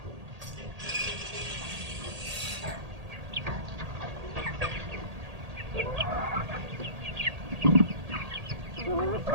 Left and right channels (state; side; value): late; left; 1.8 ms